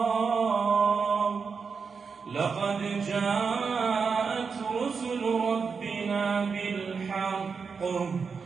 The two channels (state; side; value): quieter; left; 5.4 dB